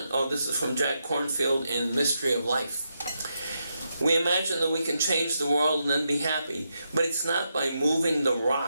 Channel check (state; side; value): inverted; both; correlation -0.84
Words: this is from Jack Kornfield in Mystery of Life. We imagine that we can change the world and then be happy, but it's not by moving the